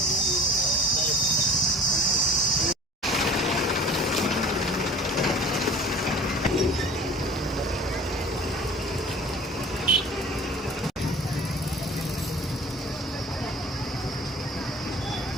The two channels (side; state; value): both; normal; correlation 0.43